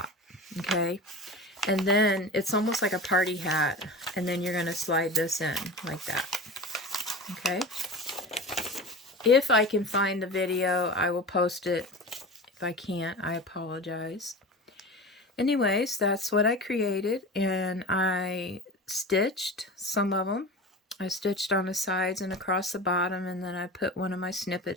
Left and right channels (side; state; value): both; normal; correlation 0.31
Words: okay? And then it's almost like a party hat, and then you're going to slide this in like that, okay? If I can find the video, I will post it. If I can't, I apologize. Anyways, that's what I created, and I stitched some of them. I stitched on the sides and across the bottom, and then I put one of my